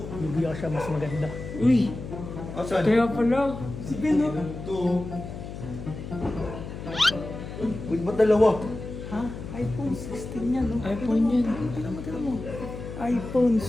Bibigyan ko siya mas maganda. Uy! Asan? Kaya pala! Si Ben no? Ito. Uy, ba't dalawa? Ha? iPhone 16 yan no? iPhone yan. Tira mo. iPhone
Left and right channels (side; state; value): left; noise; hum, 10 dB below the sound